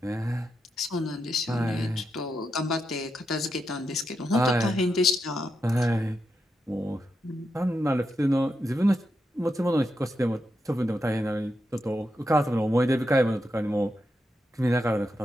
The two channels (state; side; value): normal; both; correlation 0.85